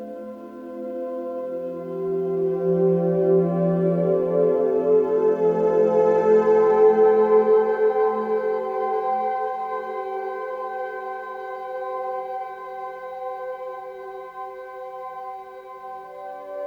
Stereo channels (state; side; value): identical; both; correlation 1.00